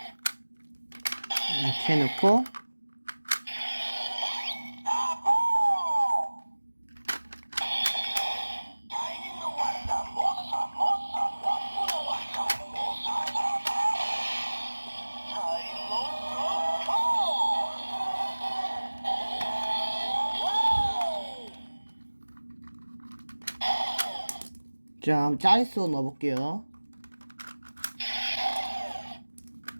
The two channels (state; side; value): inverted; both; correlation -1.00